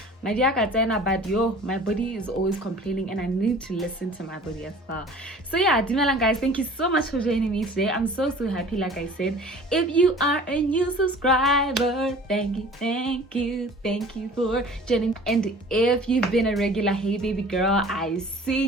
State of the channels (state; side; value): normal; both; correlation 0.46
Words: My dear Katena, but my body is always complaining, and I need to listen to my body as well. So yeah, Dumelang guys, thank you so much for joining me today. I'm so happy. Like I said, if you are a new subscriber, thank you for joining. And if you've been a regular, hey baby girl, I see